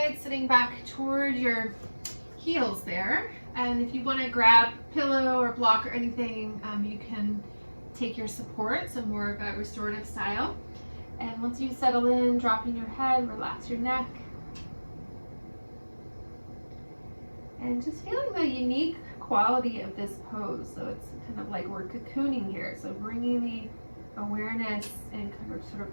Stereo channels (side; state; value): both; inverted; correlation -1.00